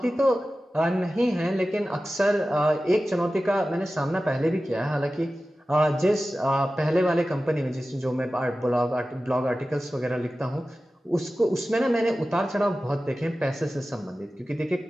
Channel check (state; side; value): normal; both; correlation 0.95